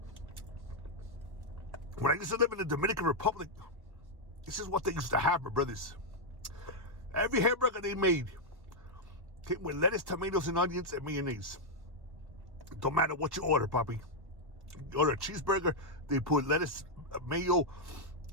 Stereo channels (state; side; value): late; left; 1.1 ms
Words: I used to live in the Dominican Republic, this is what they used to have, my brothers. Every hamburger they made came with lettuce, tomatoes, and onions, and mayonnaise. Don't matter what you order, Papi. You order a cheeseburger, they put lettuce, mayo,